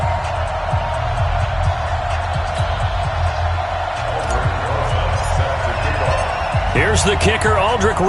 Here's the kicker, Aldrick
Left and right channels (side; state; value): both; identical; correlation 1.00